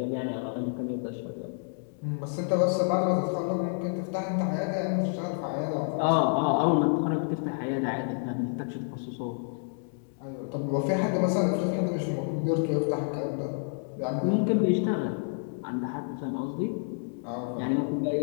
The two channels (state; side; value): silent; right; digital silence